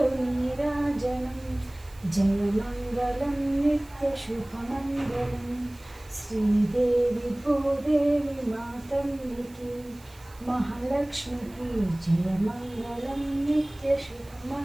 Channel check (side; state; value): right; noise; hiss, 25 dB below the sound